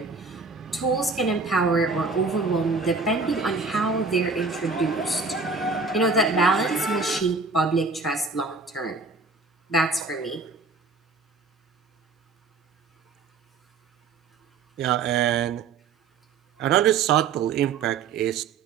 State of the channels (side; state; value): left; quieter; 4.3 dB